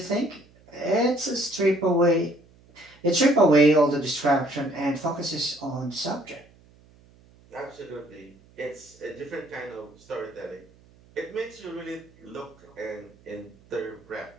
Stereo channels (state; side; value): noise; right; hum, 28 dB below the sound